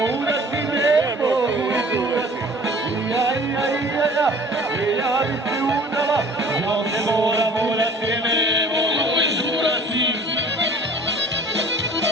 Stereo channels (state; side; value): normal; both; correlation 0.49